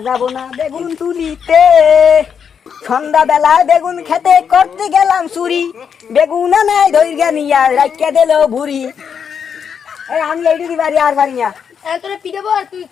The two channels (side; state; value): right; quieter; 7.2 dB